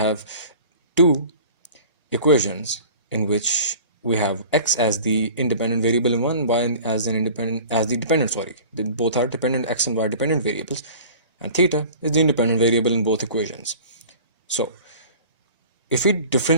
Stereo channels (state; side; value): inverted; both; correlation -0.43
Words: two equations in which we have x as the independent variable in one, y as the dependent. Both are dependent, x and y dependent variables, and theta is the independent variable in both equations. So, if we